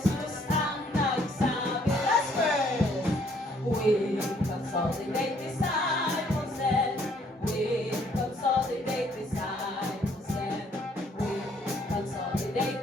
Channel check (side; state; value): both; normal; correlation 0.64